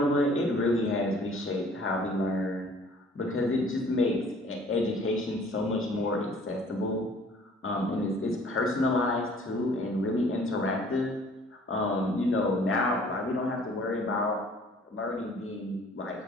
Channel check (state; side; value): normal; both; correlation 0.54